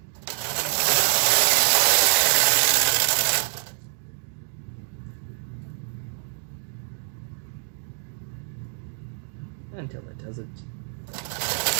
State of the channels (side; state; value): left; silent; 61 dB below the other